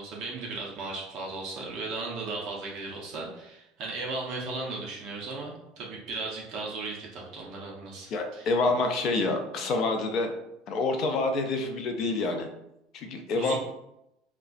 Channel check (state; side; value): normal; both; correlation 0.46